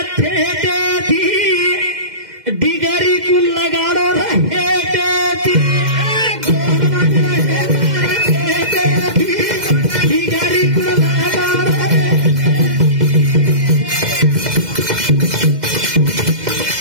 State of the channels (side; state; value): left; late; 2.1 ms